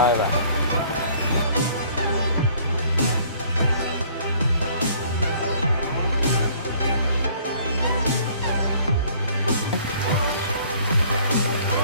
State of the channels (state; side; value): inverted; both; correlation -0.57